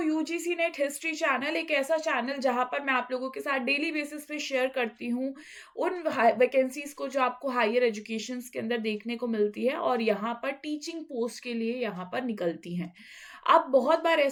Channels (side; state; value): both; identical; correlation 1.00